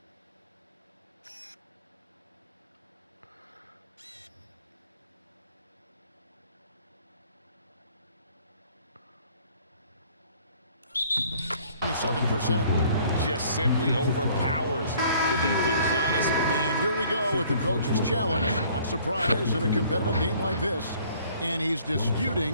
Just simply overpowers the defense. Giannis. And here we go with the coach's challenge. Not surprised in a competitive game like this. And he's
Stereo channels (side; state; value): both; inverted; correlation -0.57